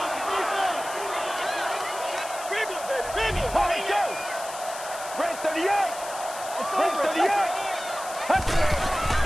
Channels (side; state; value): left; noise; hiss, 12 dB below the sound